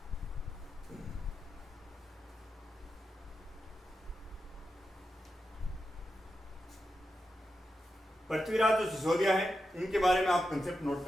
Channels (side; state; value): both; normal; correlation 0.89